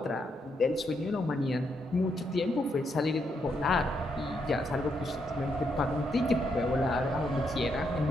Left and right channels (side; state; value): both; normal; correlation 0.78